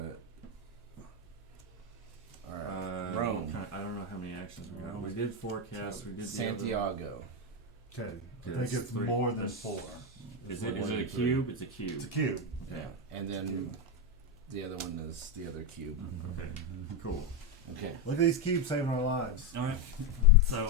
Alright. What Rome. I don't know how many actions we got. Rome. We did forecast. We did the other one. Santiago. okay, I Okay, think that's it's three. more than That's- 4. Is it a Three. cube? It's a cube. It's a cube. Okay. And then the other one is the other cube. Okay. Cool. Okay. Look at these cubes saving our lives. Alright,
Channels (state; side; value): normal; both; correlation 0.06